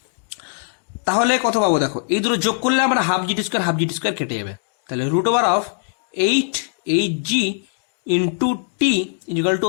তাহলে কত পাবো দেখো, এই দুটো যোগ করলে আমরা হাফ জিটি স্কোয়ার কেটে যাবে, তাহলে root over of 8hg into t equal to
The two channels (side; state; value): right; silent; digital silence